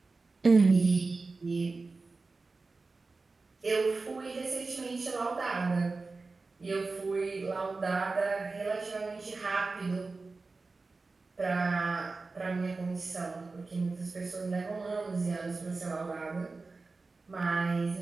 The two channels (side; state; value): left; quieter; 3.8 dB